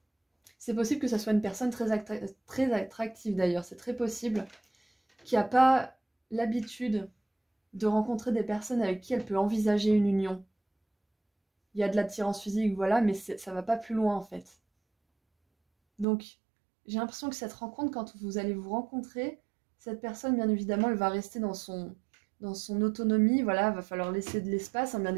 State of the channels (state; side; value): drops out; left; at 16.1 s